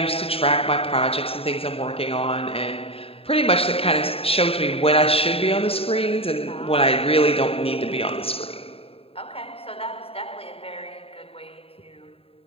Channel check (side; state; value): right; late; 0.27 ms